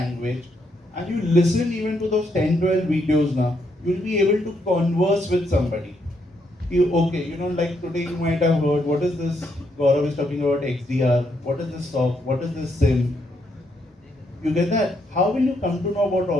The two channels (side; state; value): both; normal; correlation 0.76